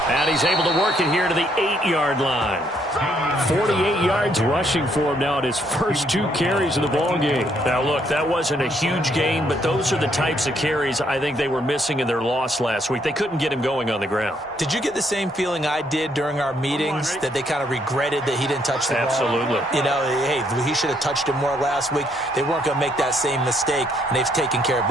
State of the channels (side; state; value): both; normal; correlation 0.71